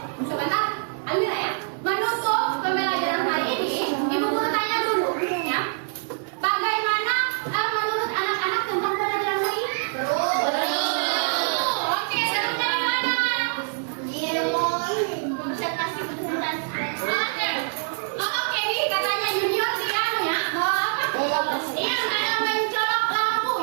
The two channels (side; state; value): left; silent; 62 dB below the other